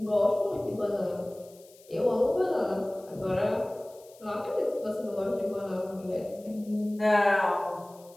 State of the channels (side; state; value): left; noise; hiss, 26 dB below the sound